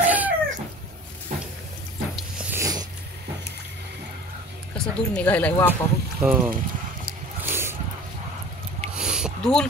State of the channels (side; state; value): both; normal; correlation 0.42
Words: कसं दूर निघायलाय वापा बघ. हो धुवून